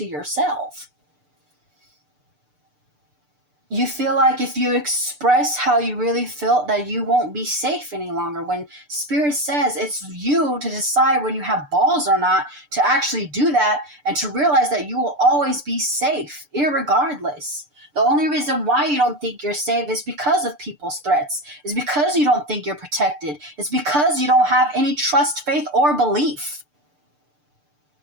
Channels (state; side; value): late; left; 6.8 ms